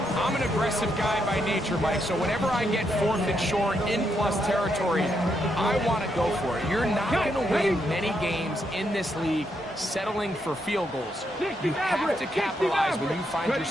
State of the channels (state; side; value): normal; both; correlation 0.79